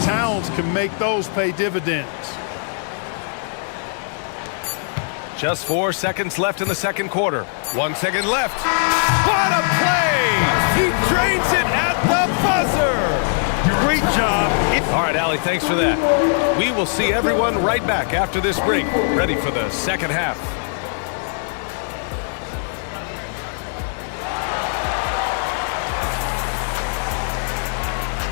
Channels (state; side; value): silent; right; digital silence